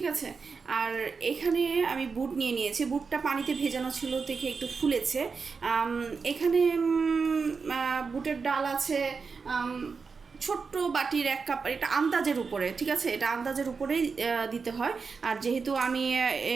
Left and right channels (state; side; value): quieter; left; 5.1 dB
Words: আছে। আর এখানে আমি বুট নিয়ে নিয়েছি, বুটটা পানিতে ভেজানো ছিল থেকে একটু ফুলেছে। এখানে বুটের ডাল আছে ছোট্ট বাটির 1 কাপ, এটা আন্দাজের উপরে, ঠিক আছে, এটা আন্দাজের উপরেই দিতে হয়। আর যেহেতু আমি